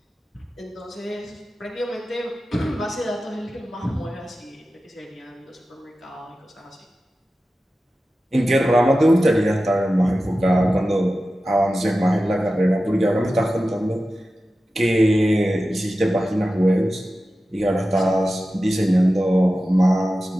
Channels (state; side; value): normal; both; correlation 0.94